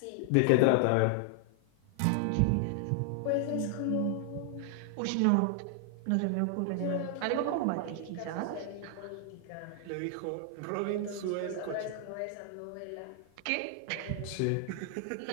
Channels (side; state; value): both; different; correlation 0.00